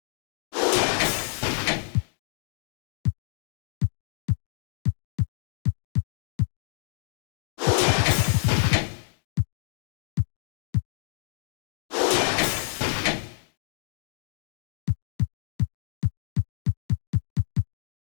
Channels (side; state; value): right; silent; digital silence